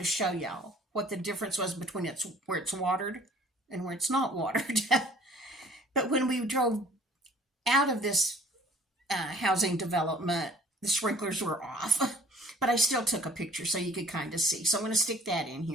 show y'all what the difference was between where it's watered and where it's not watered. But when we drove out of this housing development, the sprinklers were off. But I still took a picture so you could kind of see. So I'm going to stick that in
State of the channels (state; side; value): normal; both; correlation 0.54